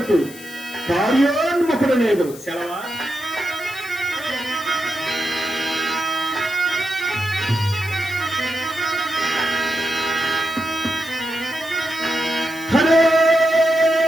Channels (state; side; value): noise; left; hiss, 17 dB below the sound